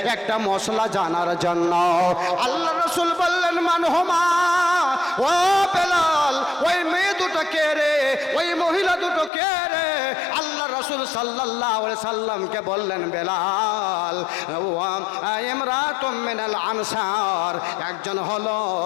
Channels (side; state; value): right; drops out; at 9.3 s